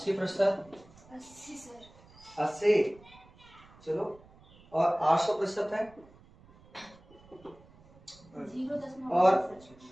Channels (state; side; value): noise; right; rumble, 25 dB below the sound